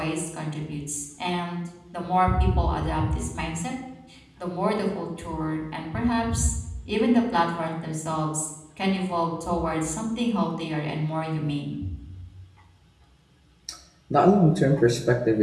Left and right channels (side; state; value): both; identical; correlation 1.00